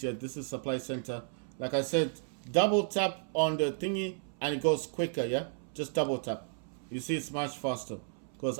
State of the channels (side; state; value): left; silent; 56 dB below the other